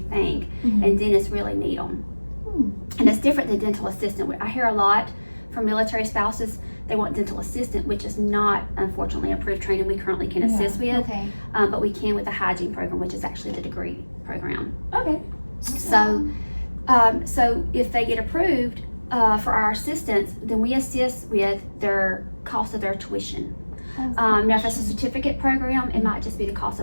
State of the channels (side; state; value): both; inverted; correlation -1.00